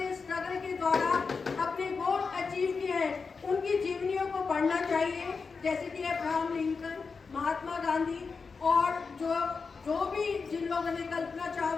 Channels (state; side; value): quieter; right; 4.9 dB